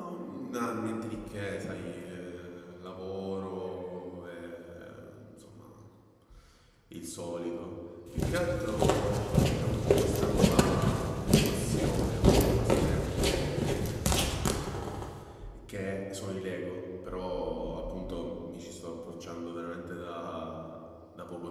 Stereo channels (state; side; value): identical; both; correlation 1.00